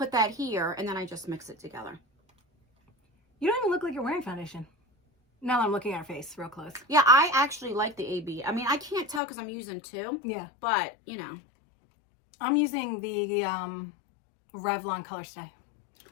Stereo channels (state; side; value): drops out; right; at 9.2 s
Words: that here, and then I just mix it together. You don't even look like you're wearing foundation. Now that I'm looking at her face real close. Yeah, I actually like the AB. I mean, I can't tell because I'm using 2. Yeah. But, you know. I'm using the Revlon Color Stay.